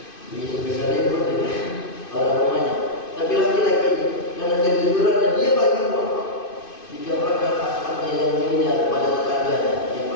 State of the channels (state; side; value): late; right; 2.5 ms